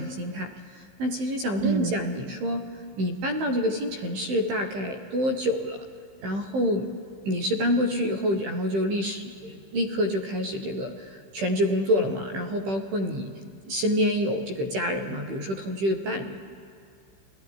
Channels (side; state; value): left; late; 15 ms